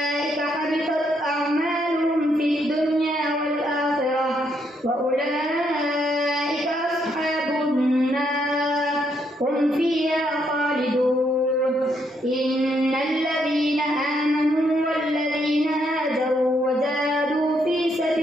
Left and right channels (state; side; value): normal; both; correlation 0.75